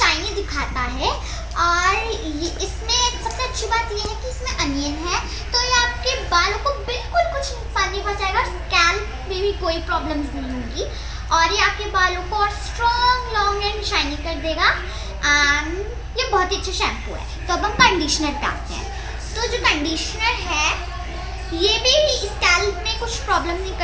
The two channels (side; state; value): both; identical; correlation 1.00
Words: दिखाता है। और इसमें सबसे अच्छी बात ये है कि इसमें अनियन है, तो ये आपके बालों को बिल्कुल कुछ नुकसान नहीं पहुंचाएगा, स्कैल्प में भी कोई प्रॉब्लम्स नहीं होगी और ये आपके बालों को और स्ट्रॉन्ग, लॉन्ग एंड शाइनी कर देगा। ये बहुत ही अच्छा शैम्पू है। तो अब हम कंडीशनर पे आते हैं। तो जो कंडीशनर है ये भी स्कैल्प में कुछ प्रॉब्लम नहीं